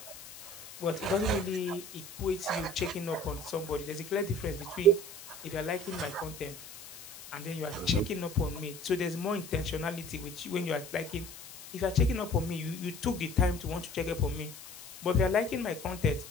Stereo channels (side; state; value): left; noise; hiss, 15 dB below the sound